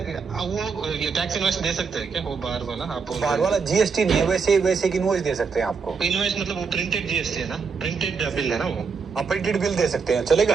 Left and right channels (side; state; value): left; quieter; 5.4 dB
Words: वो ये टैक्स इनवॉइस दे सकते हैं क्या वो बाहर वाला. आप बाहर वाला जीएसटी नहीं है वैसे की इनवॉइस दे सकते हैं आपको. इनवॉइस मतलब वो प्रिंटेड जीएसटी है ना, प्रिंटेड बिल है ना वो. आप प्रिंटेड बिल दे सकते हैं चलेगा.